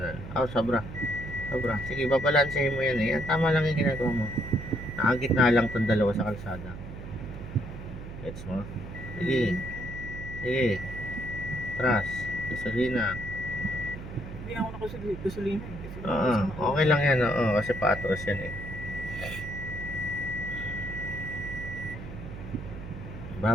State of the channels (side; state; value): right; noise; hum, 10 dB below the sound